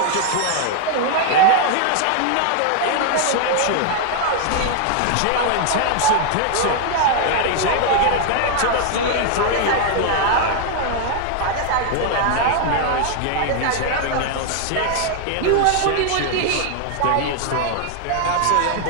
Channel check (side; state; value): both; different; correlation 0.00